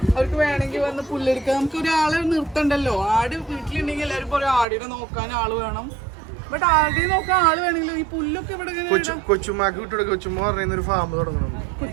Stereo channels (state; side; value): drops out; left; at 4.7 s